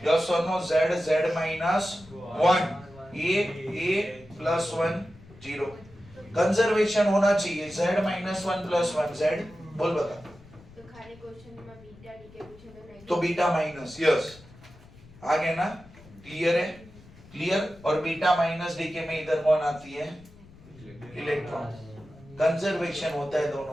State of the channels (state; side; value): noise; left; rumble, 22 dB below the sound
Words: यस और no? Z minus 1, A plus 1 0। Conservation होना चाहिए। Z माइनस 1 प्लस 1 Z बोल बता। तो खाली क्वेश्चन में बीटा डीके पूछे तो नहीं तो बीटा माइनस, यस आगे ना? क्लियर है? क्लियर। और बीटा माइनस डीके में इधर कौन आती है? इलेक्ट्रॉन। कंजर्वेशन होता है